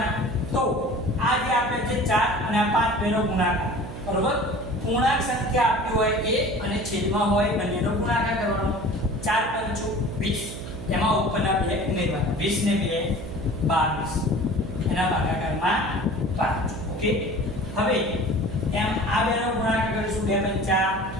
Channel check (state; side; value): noise; right; hum, 10 dB below the sound